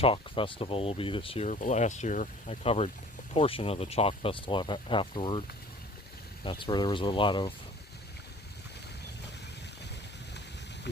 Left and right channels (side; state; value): both; normal; correlation 0.49